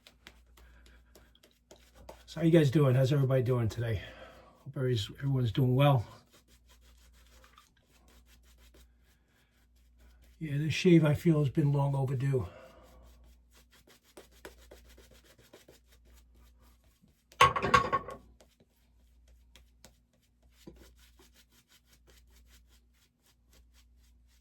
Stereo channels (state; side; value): identical; both; correlation 1.00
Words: So how you guys doing? How's everybody doing today? Hope everyone's doing well. Yeah, this shave I feel has been long overdue.